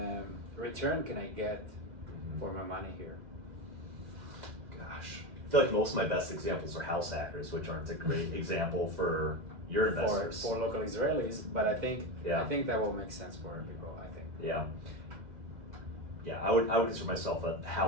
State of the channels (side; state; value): left; late; 2.0 ms